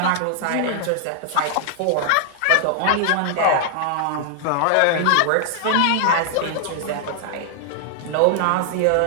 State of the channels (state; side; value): different; both; correlation 0.00